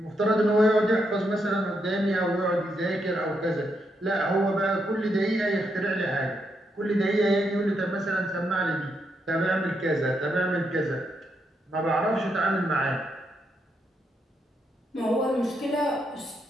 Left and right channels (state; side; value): normal; both; correlation 0.80